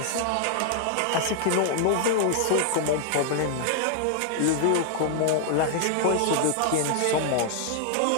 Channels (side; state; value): both; different; correlation 0.00